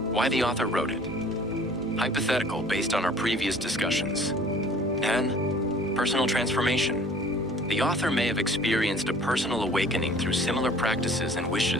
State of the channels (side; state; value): both; normal; correlation 0.50